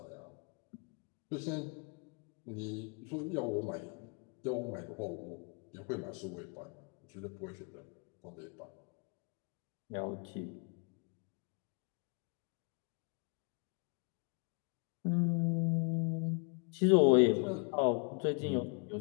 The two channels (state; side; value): quieter; right; 37.6 dB